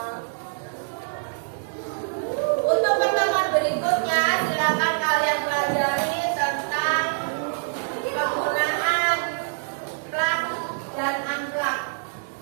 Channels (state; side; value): silent; left; digital silence